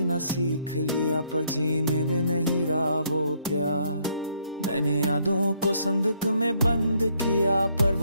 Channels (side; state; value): both; inverted; correlation -0.70